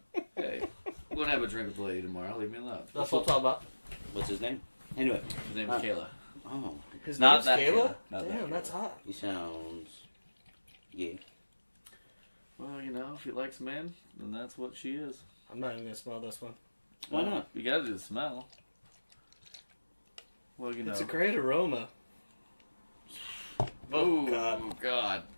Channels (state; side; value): inverted; both; correlation -1.00